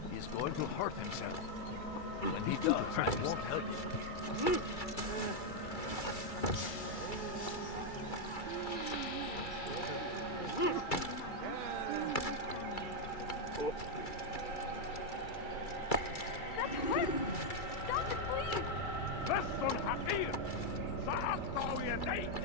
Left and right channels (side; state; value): right; late; 2.3 ms